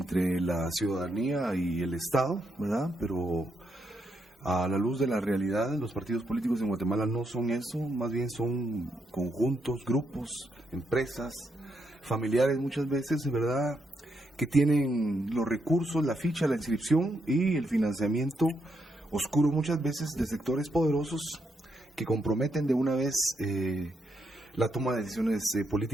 la ciudadanía y el Estado, ¿verdad? Pero a la luz de la realidad, los partidos políticos en Guatemala no son eso, más bien son conjuntos, grupos, empresas, familiares muchas veces, ¿verdad?, que tienen los recursos, la ficha, la inscripción y el financiamiento oscuro muchas veces de sectores poderosos que comprometen de una vez la toma de decisiones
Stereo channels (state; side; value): normal; both; correlation 0.79